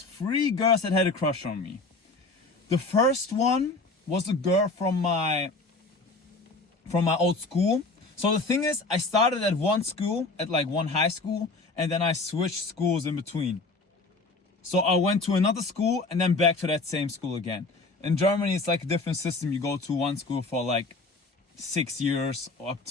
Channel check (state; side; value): quieter; right; 3.4 dB